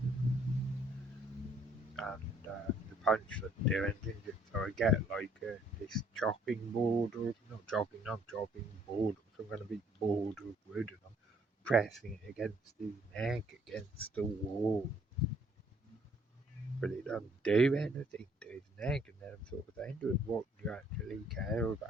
and the punch didn't do anything. So I get like this chopping board, or not chopping board, or some kind of big board of wood, and I'm pressing it against his neck, against the wall. But it doesn't do anything to his neck, and then I'm sort of saying to him, what do you actually care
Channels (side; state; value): both; normal; correlation 0.63